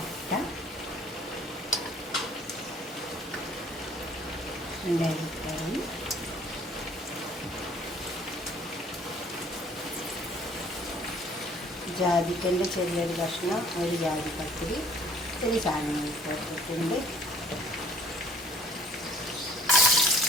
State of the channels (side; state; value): both; normal; correlation 0.55